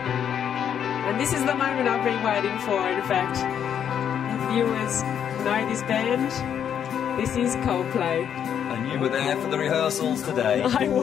And this is the moment I've been waiting for, in fact. If viewers know this band, this is Coldplay. And you were there for the rehearsals today. I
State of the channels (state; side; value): quieter; right; 8.8 dB